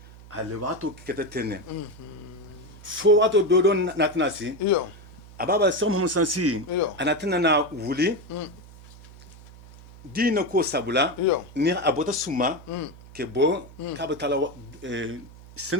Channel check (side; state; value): right; noise; hum, 20 dB below the sound